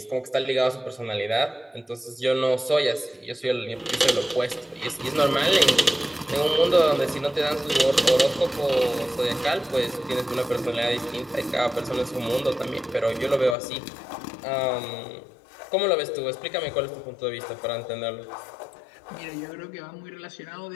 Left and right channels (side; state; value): right; drops out; at 13.6 s